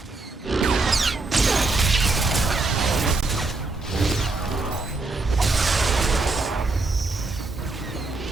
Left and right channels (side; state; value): left; quieter; 3.5 dB